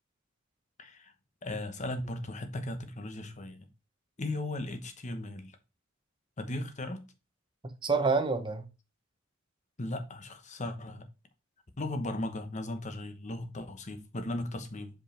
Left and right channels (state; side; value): normal; both; correlation 0.51